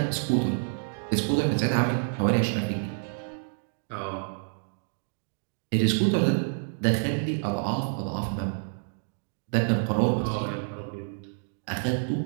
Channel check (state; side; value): silent; left; digital silence